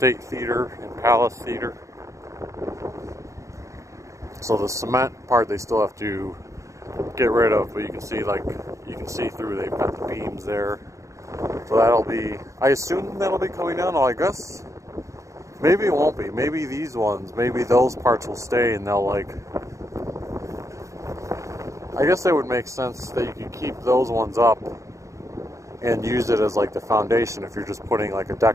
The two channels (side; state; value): left; late; 0.15 ms